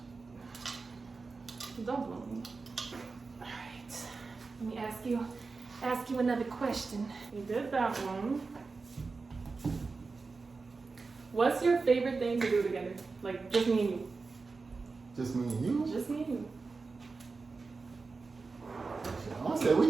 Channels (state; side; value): quieter; left; 4.2 dB